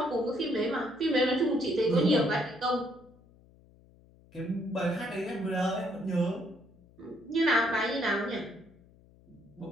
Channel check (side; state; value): left; noise; hum, 27 dB below the sound